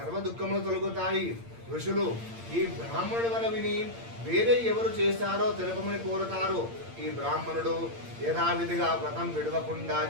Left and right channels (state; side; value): late; left; 8.7 ms